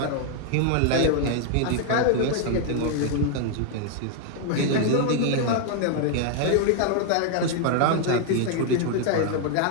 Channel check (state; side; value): different; both; correlation 0.00